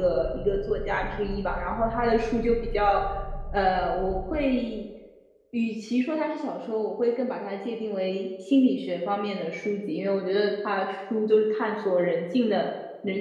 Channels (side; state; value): both; identical; correlation 1.00